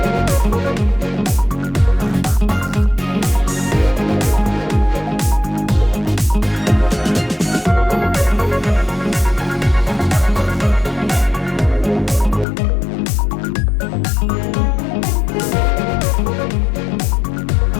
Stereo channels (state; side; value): drops out; right; at 12.5 s